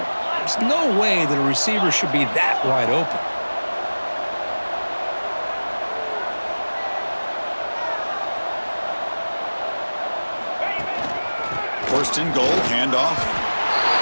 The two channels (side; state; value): both; inverted; correlation -1.00